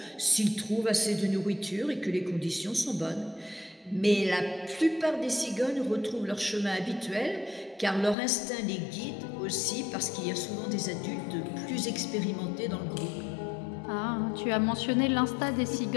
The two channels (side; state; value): right; drops out; at 8.2 s